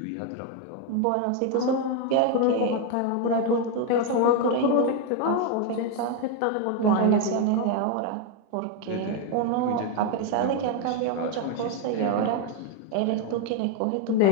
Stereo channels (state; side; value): different; both; correlation 0.01